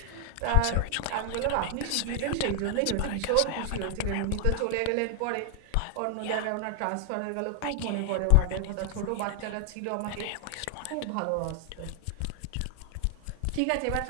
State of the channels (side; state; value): both; different; correlation 0.00